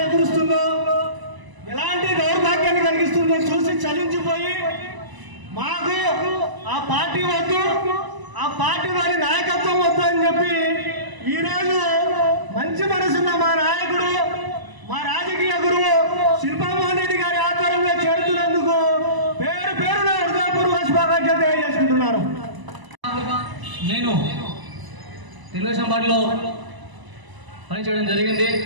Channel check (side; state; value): left; late; 1.0 ms